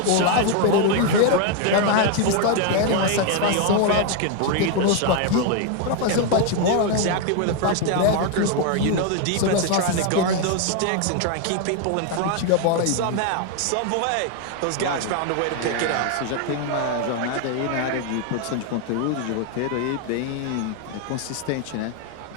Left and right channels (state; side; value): different; both; correlation 0.01